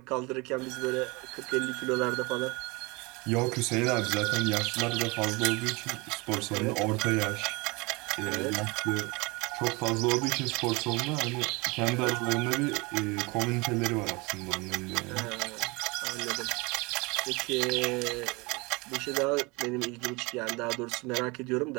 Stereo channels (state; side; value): quieter; left; 26.3 dB